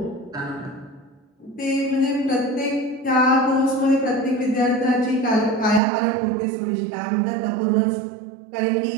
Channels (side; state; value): left; drops out; at 5.8 s